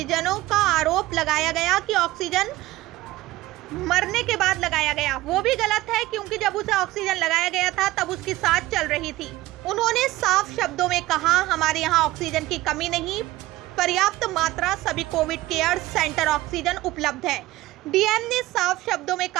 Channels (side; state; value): left; quieter; 17.6 dB